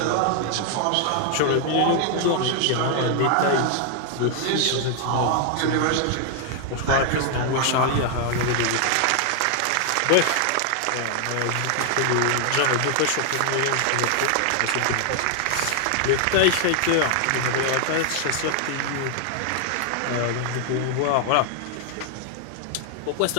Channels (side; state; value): both; different; correlation 0.00